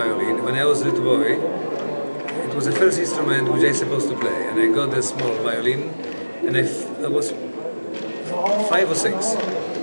When I was a little boy, it was the first instrument which I was supposed to play, and I got a small violin, and I was 5 or 6,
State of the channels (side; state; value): both; inverted; correlation -1.00